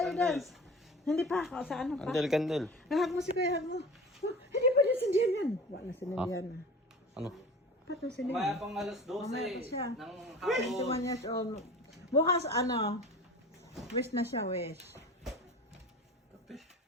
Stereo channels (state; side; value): normal; both; correlation 0.37